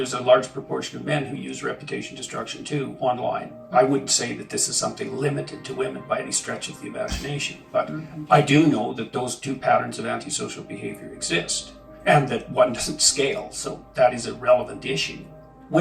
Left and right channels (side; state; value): both; identical; correlation 1.00